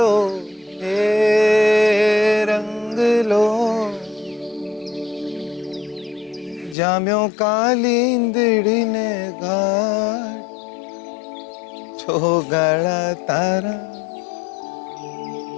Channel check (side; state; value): right; drops out; at 6.8 s